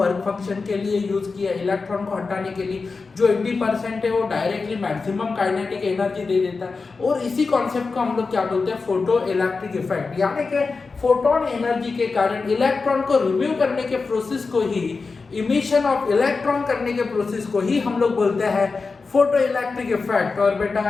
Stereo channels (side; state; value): right; quieter; 4.3 dB